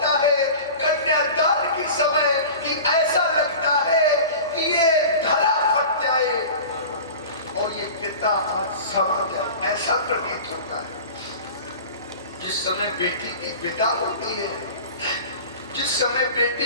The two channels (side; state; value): both; inverted; correlation -0.37